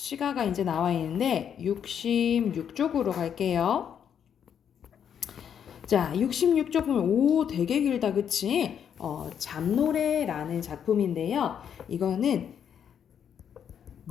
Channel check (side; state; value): right; quieter; 8.4 dB